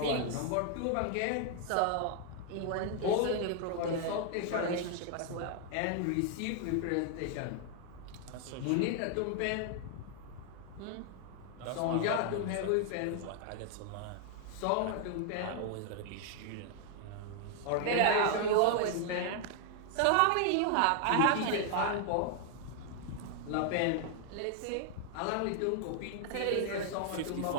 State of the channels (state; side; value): different; both; correlation 0.00